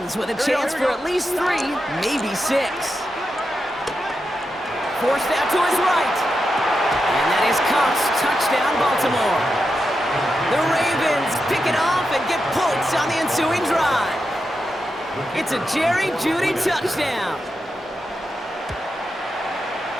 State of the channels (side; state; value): both; normal; correlation 0.87